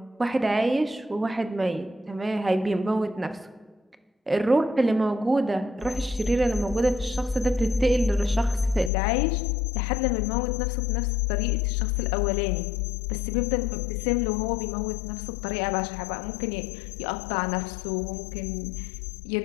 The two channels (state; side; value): drops out; right; at 8.9 s